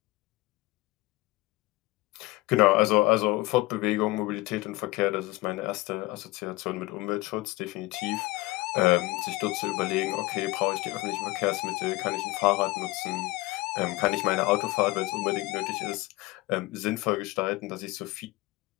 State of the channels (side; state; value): right; quieter; 20.4 dB